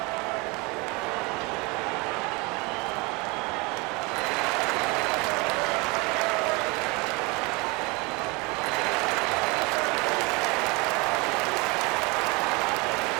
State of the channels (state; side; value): quieter; left; 27.1 dB